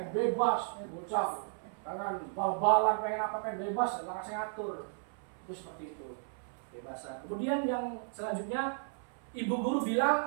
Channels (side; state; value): left; silent; 55 dB below the other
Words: bebas, bocah, pengen bal-balan, pengen apa, pengen bebas, nggak kasih ngatur. Itu seperti itu kebebasan. Kemudian yang selanjutnya, ibu guru